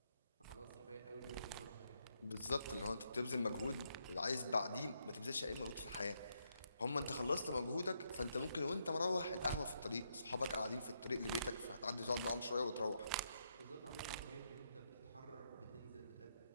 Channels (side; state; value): both; inverted; correlation -0.78